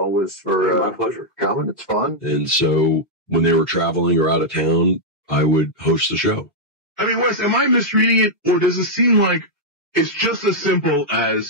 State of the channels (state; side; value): normal; both; correlation -0.05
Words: for my pleasure coming. It's fun. And so when they were traveling or out of town, I would host the show. I mean, Wes, am I misreading it, or does it seem like it's just as simple